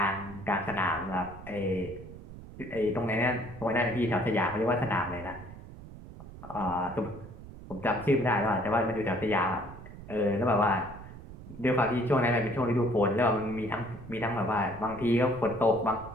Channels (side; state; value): right; noise; rumble, 15 dB below the sound